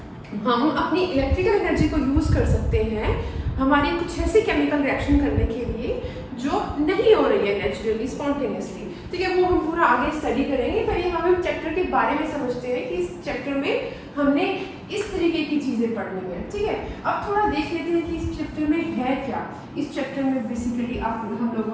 हम अपनी इलेक्ट्रिकल एनर्जी को यूज कर सकते हैं हमारी कुछ ऐसी केमिकल रिएक्शन करने के लिए जो नहीं हो रही है नेचुरली, स्पॉन्टेनियसली। ठीक है, वो हम पूरा आगे स्टडी करेंगे। पहले हम चैप्टर के बारे में समझते हैं कि इस चैप्टर में हमने इस तरीके की चीजें पढ़नी है। ठीक है, अब थोड़ा देख लेते हैं कि इस चैप्टर में है क्या। इस चैप्टर में बेसिकली हम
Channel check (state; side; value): identical; both; correlation 1.00